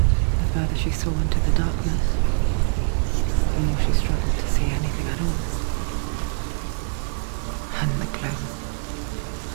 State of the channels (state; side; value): silent; left; digital silence